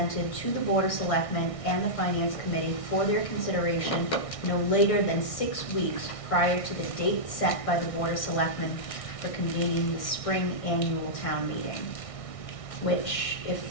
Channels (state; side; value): late; right; 1.6 ms